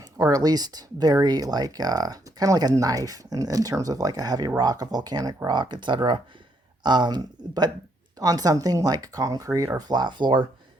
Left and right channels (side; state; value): both; normal; correlation 0.73